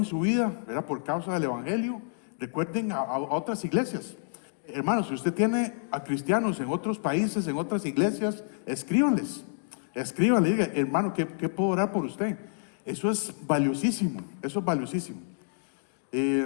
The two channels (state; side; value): silent; right; digital silence